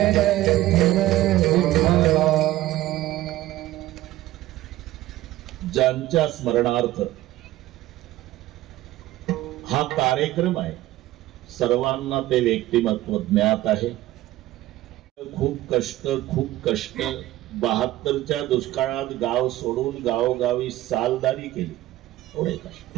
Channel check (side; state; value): left; quieter; 15.7 dB